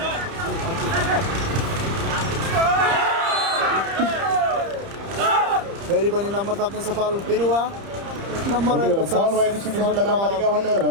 फेरि पनि नम्बर थप्न सफल बिरुवा नम्बर रहेको छ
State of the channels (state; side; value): late; left; 30 ms